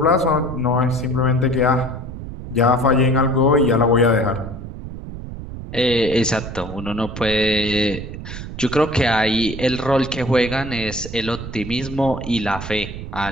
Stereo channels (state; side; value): noise; right; rumble, 10 dB below the sound